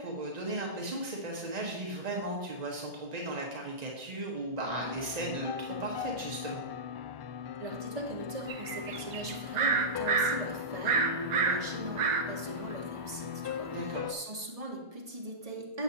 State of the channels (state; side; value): late; left; 1.7 ms